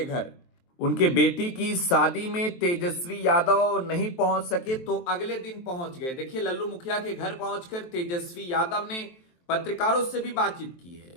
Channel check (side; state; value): right; late; 23 ms